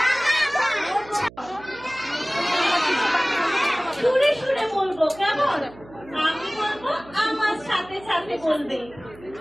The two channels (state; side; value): noise; right; hum, 21 dB below the sound